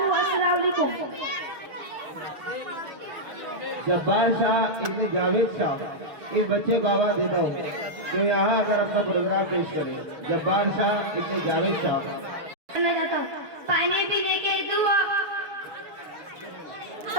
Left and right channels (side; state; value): left; late; 6.7 ms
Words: जब्बार शाह इब्न जावेद शाह इस बच्चे को आवाज देता हूँ तो यहाँ आकर अपना प्रोग्राम पेश करें। जब्बार शाह इब्न जावेद शाह। पानी पीने की दुआ,